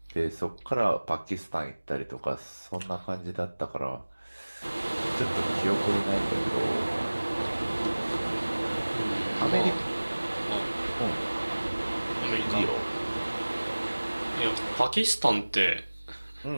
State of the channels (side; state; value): both; inverted; correlation -1.00